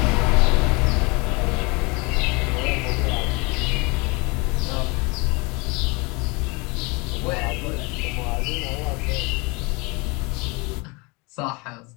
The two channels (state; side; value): quieter; right; 27.6 dB